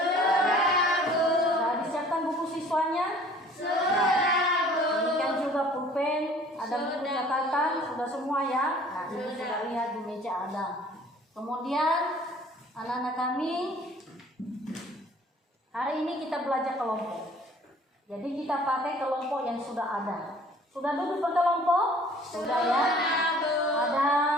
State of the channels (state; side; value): normal; both; correlation 0.52